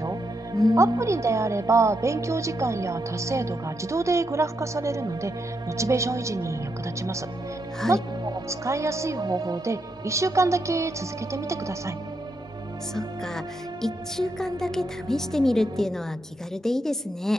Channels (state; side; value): normal; both; correlation 0.81